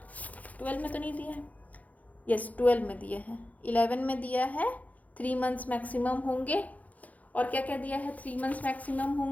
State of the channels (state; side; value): late; right; 0.074 ms